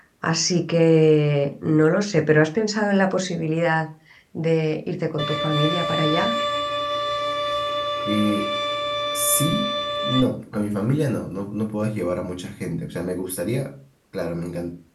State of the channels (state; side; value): identical; both; correlation 1.00